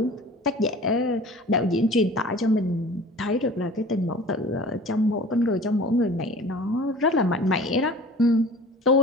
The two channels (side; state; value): both; normal; correlation 0.43